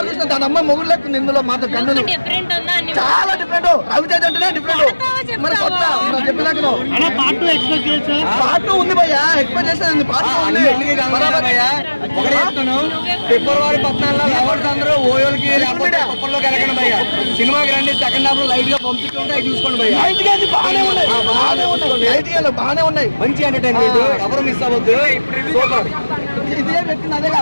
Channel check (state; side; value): inverted; both; correlation -1.00